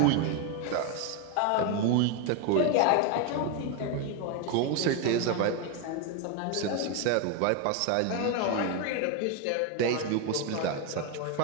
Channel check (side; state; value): both; different; correlation 0.01